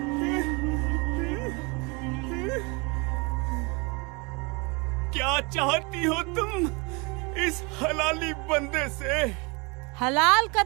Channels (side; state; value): left; quieter; 29.1 dB